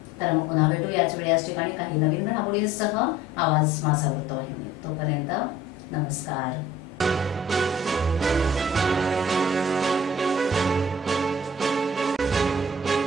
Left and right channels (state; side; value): normal; both; correlation 0.51